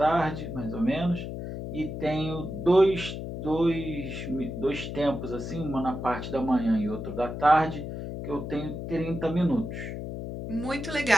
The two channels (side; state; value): left; noise; hum, 6 dB below the sound